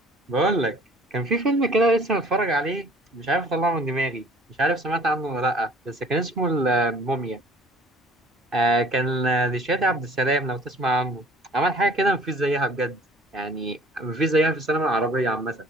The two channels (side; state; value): both; normal; correlation 0.51